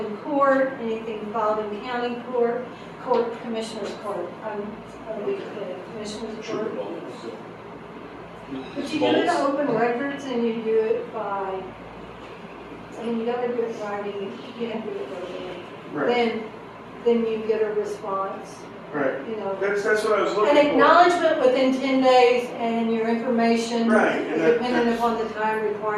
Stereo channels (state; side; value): identical; both; correlation 1.00